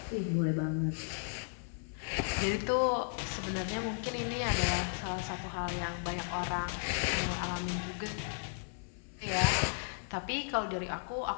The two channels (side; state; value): right; silent; 54 dB below the other